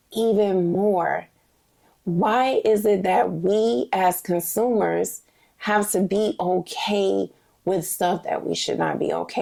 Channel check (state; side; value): identical; both; correlation 1.00